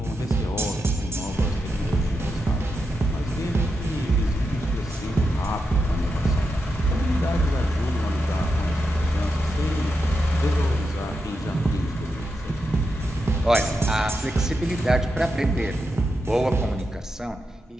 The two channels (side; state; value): both; normal; correlation 0.86